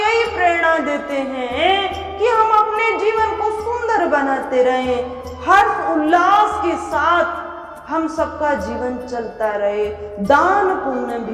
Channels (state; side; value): identical; both; correlation 1.00